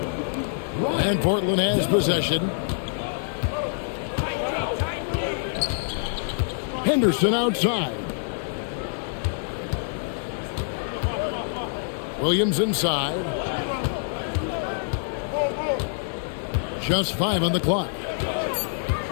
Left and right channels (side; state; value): right; silent; digital silence